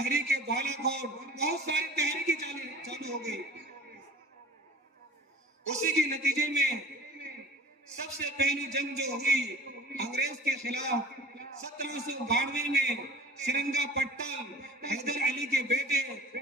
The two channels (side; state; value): both; normal; correlation 0.44